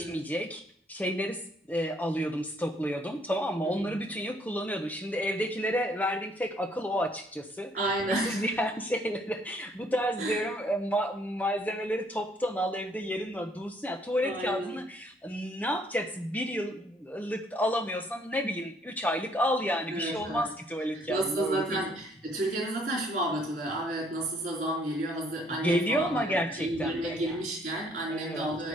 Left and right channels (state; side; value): normal; both; correlation 0.65